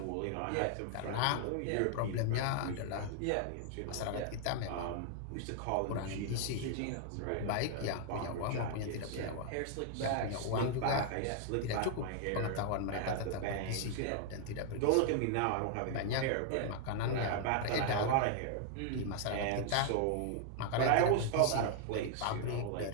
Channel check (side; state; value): both; different; correlation 0.00